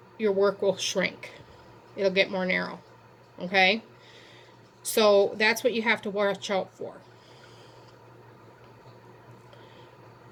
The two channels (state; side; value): identical; both; correlation 1.00